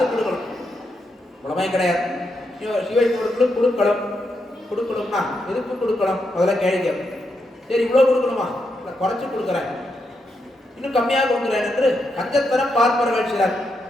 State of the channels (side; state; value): both; normal; correlation 0.82